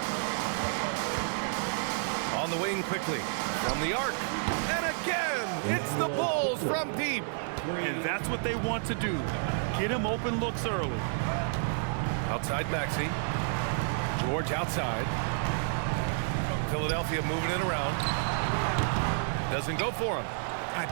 On the wing quickly, from the arc. And again, it's the Bulls from deep. And that's what they want to do. Get him open looks early. Outside Maxey. George outside. Philadelphia moving it around. Doesn't go for him. I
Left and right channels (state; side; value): silent; left; 58 dB below the other